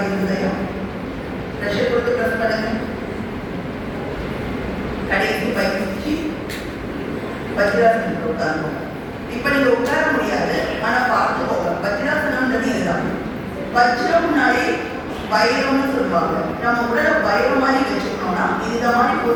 இருதயம். ப்ரெஷர் கொடுத்து ப்ரெஸ் பண்ணுங்க. கடைசி பயிற்சி வஜ்ராசனத்தில் உட்காரணும். இப்ப நீங்க உட்கார முடியாது, ஆனா பார்த்துக்கோங்க. வஜ்ராசனம்ன்றது இதுதான். வஜ்ரம்னாலே வைரம்னு சொல்லுவாங்க. நம்ம உடலை வைரம் மாதிரி வச்சுக்கணும்னா இந்த மாதிரி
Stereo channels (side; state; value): both; identical; correlation 1.00